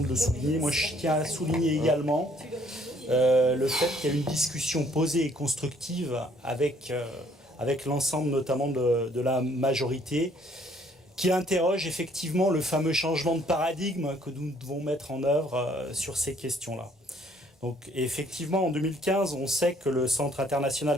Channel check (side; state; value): both; normal; correlation 0.63